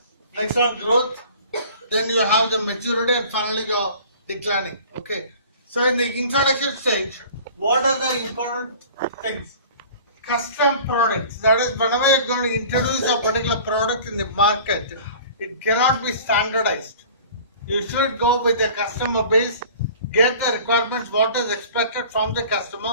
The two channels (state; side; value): inverted; both; correlation -0.45